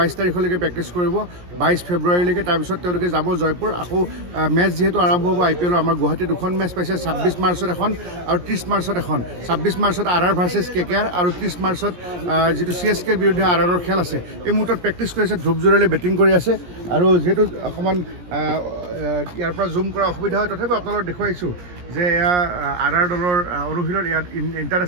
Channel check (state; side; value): late; left; 17 ms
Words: তাৰিখলৈকে প্ৰেক্টিছ কৰিব 22 ফেব্ৰুৱাৰীলৈকে তাৰপিছত তেওঁলোকে যাব জয়পুৰ আকৌ মেচ যেহেতু আৰম্ভ হ'ব IPLৰ আমাৰ গুৱাহাটীত দুখন মেচ পাইছে 26 মাৰ্চত এখন আৰু 30 মাৰ্চত এখন 26 মাৰ্চত RR ভাৰ্চেছ KKR আৰু 30 মাৰ্চত যেটো CSK বিৰুদ্ধে RRৰ খেল আছে এই মুহূৰ্তত প্ৰেক্টিছ কৰি আছে ধ্ৰুৱ জুৰেলে বেটিং কৰি আছে আৰু যেহেতু অকমান ইয়াৰ পৰা জুম কৰা অসুবিধা হয় তথাপি আপোনালোকক দেখুৱাইছোঁ যে এয়া RR দলৰ অনুশীলন ইয়াত